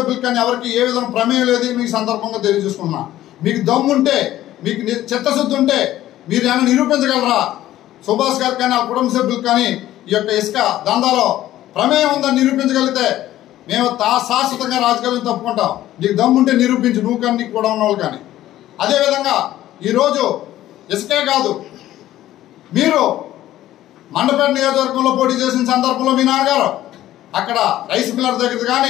కానీ ఎవరికి ఏ విధంగా ప్రమేయం లేదు. మీకు సందర్భంగా తెలియజేసుకున్నా, మీకు దమ్ముంటే, మీకు చిత్తశుద్ధి ఉంటే మీరు ఏమైనా నిరూపించగలరా? సుభాష్ గారికి కానీ ఆ కుటుంబ సభ్యులకు కానీ ఈ యొక్క ఇసుక దందాలో ప్రమేయం ఉందని నిరూపించగలిగితే మేము శాశ్వతంగా రాజకీయాలను తప్పుకుంటాం. నీకు దమ్ముంటే నిరూపించు, నువ్వు కానీ నీకు కూడా ఉన్న వాళ్ళు కానీ. అదేవిధంగా ఈరోజు ఇసుకే కాదు, మీరు మండపేట నియోజకవర్గంలో పోటీ చేసిన సందర్భంలో మీ నాన్నగారు అక్కడ రైస్ మిల్లర్ దగ్గర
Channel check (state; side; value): quieter; right; 13.9 dB